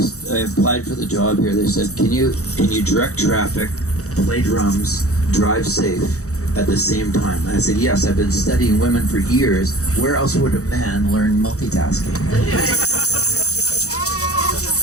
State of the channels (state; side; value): late; right; 0.65 ms